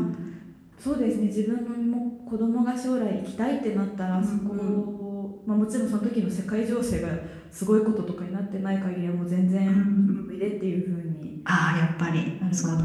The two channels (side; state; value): both; identical; correlation 1.00